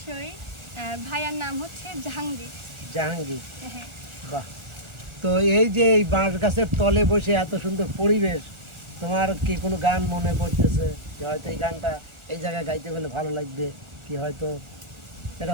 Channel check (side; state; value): left; late; 1.3 ms